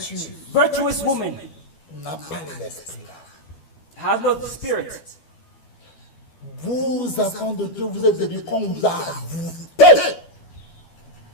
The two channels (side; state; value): right; late; 12 ms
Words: Virtuous woman n'a pas l'esprit là. has no spirit. Vous, enfants de Dieu, vous êtes devenus comme vous avez.